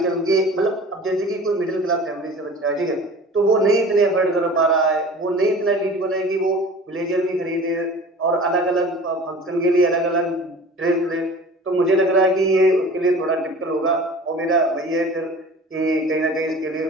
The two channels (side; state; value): both; normal; correlation 0.41